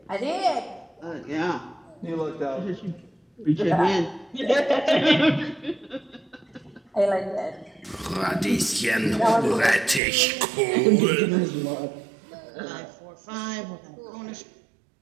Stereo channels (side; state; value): left; drops out; at 10.0 s